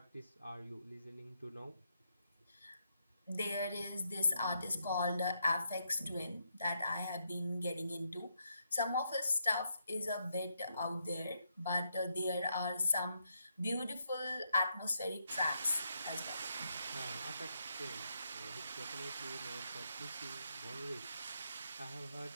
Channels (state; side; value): inverted; both; correlation -0.79